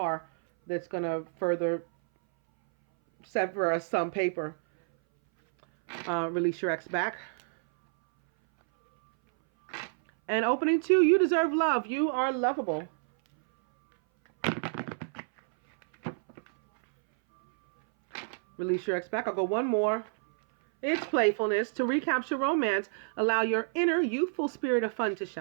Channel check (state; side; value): silent; left; 59 dB below the other